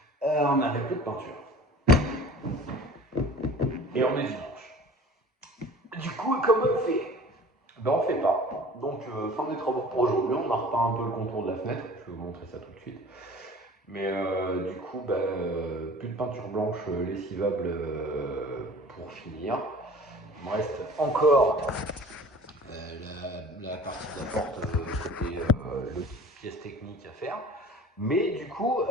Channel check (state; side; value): normal; both; correlation 0.44